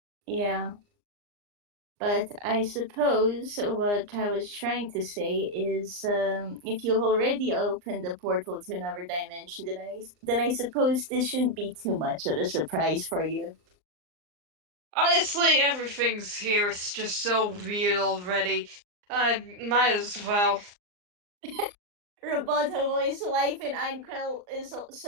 yeah. But I suppose what I was trying to say is, if you've already opened a portal to another dimension, then I suppose this shouldn't be too much of a surprise for you. Honestly, everything's here is just so weird already. I might as well. Roboto voice life in Einkrell is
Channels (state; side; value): late; left; 39 ms